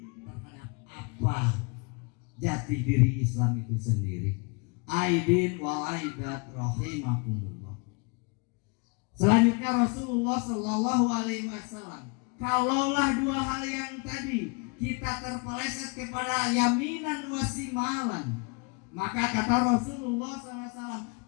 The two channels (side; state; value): right; quieter; 31.4 dB